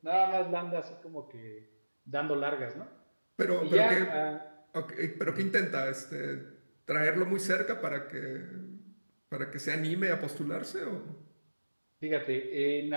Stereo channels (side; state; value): both; inverted; correlation -1.00